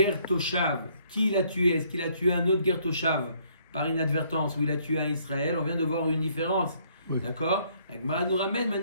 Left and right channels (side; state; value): both; inverted; correlation -0.65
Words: Toshav, qui il a tué? Est-ce qu'il a tué un autre Ger Toshav par inadvertance ou il a tué un Israël? On vient de voir une différence. Oui. D'accord? La Gemara nous ramène